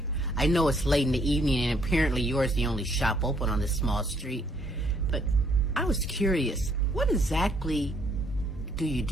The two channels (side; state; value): both; normal; correlation 0.67